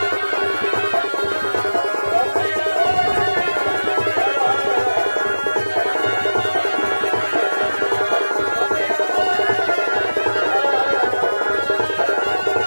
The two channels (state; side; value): inverted; both; correlation -1.00